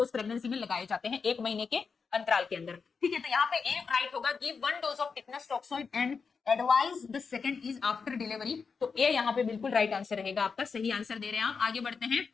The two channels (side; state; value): right; quieter; 5.3 dB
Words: प्रेगनेंसी में लगाए जाते हैं 1 महीने के अंतराल के अंदर। ठीक है, तो यहाँ पे ए राइट होगा, give 1 dose of tetanus toxoid and advise the second is after delivery. तो ए यहाँ पे बिल्कुल राइट आंसर रहेगा आपका, सही आंसर दे रहे हैं आप। आगे बढ़ते हैं